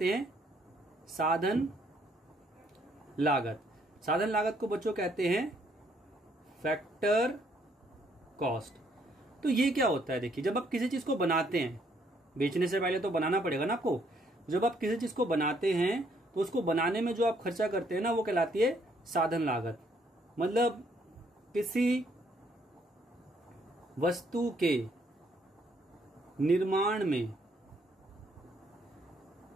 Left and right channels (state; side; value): normal; both; correlation 0.68